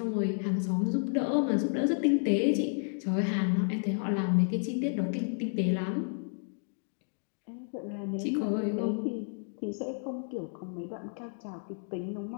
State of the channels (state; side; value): silent; right; 57 dB below the other